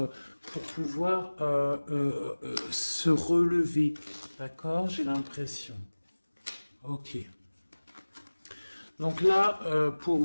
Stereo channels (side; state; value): both; inverted; correlation -1.00